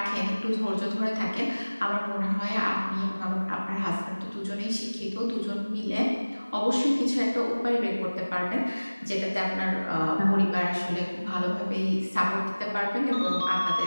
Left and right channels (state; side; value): inverted; both; correlation -1.00